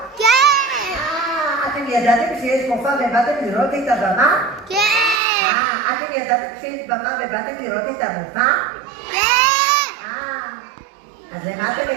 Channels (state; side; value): drops out; left; at 5.2 s